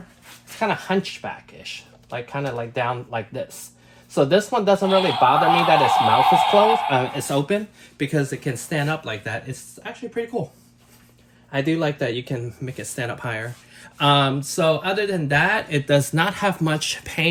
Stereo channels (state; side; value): identical; both; correlation 1.00